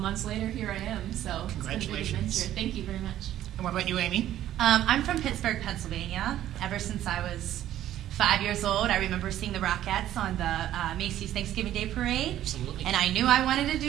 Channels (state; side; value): quieter; left; 12.5 dB